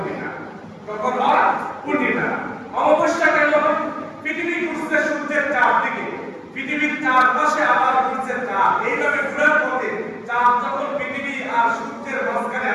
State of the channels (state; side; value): identical; both; correlation 1.00